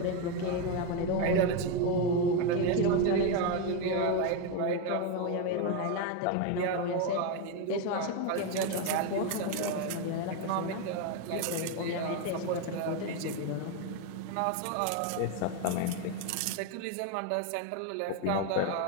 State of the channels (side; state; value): both; different; correlation 0.02